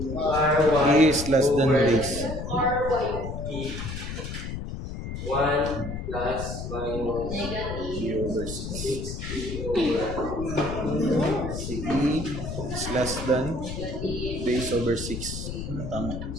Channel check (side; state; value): left; noise; rumble, 6 dB below the sound